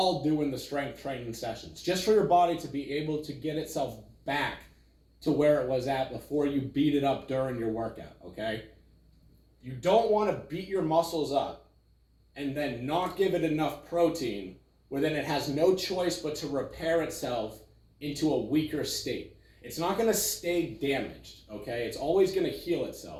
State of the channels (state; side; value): identical; both; correlation 1.00